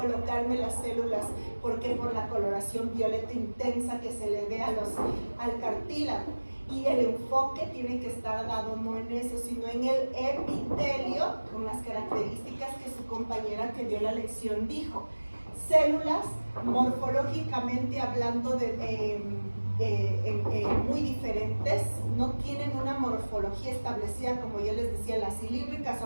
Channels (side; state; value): both; inverted; correlation -1.00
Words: las células, porque por la coloración violeta intensa que se le dé al cartílago. Y el enfoque tiene que estar dado no en eso, sino en el epitelio, con las características que su compañera que dio la lección dijo. Células, morfológicamente hablando, muy diferentes, no tienen una morfología establecida, como yo les decía, las cilíndricas